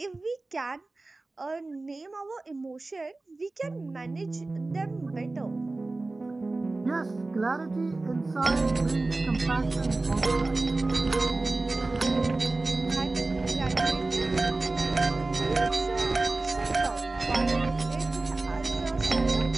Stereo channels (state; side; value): quieter; left; 3.2 dB